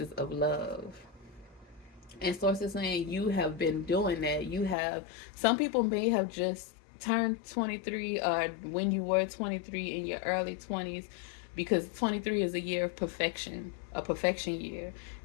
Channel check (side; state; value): right; drops out; at 4.8 s